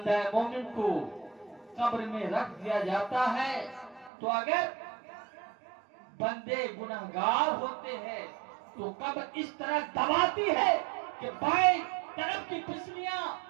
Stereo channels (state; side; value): drops out; left; at 4.1 s